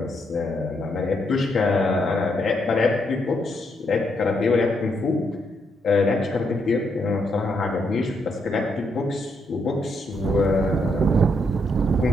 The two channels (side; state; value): both; normal; correlation 0.77